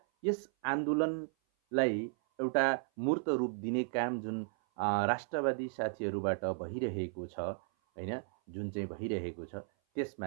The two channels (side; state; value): left; silent; 55 dB below the other